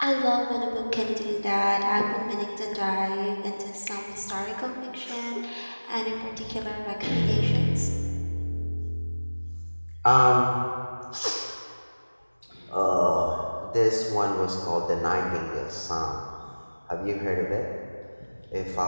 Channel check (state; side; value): inverted; both; correlation -1.00